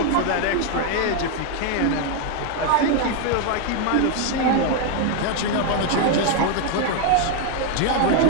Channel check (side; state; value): both; different; correlation 0.01